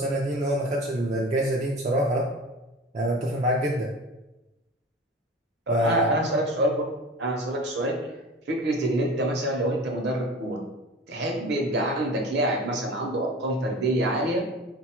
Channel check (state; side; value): normal; both; correlation 0.36